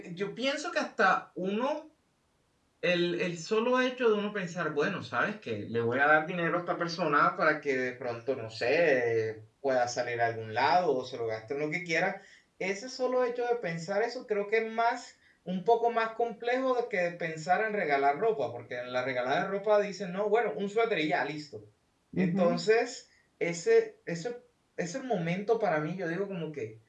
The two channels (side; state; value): both; identical; correlation 1.00